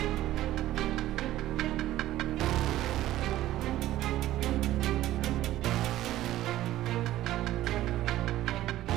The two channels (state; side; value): quieter; left; 14.5 dB